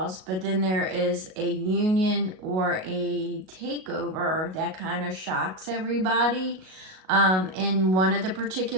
but then there is a union or a takeover that kind of shocks everybody. In one of the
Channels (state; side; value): late; left; 38 ms